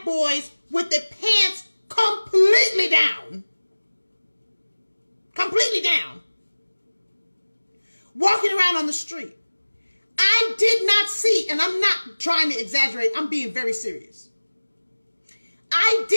boys with their pants completely down, walking around on the street. I did not see, and I'm not trying to exaggerate, I'm being very serious. I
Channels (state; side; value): inverted; both; correlation -1.00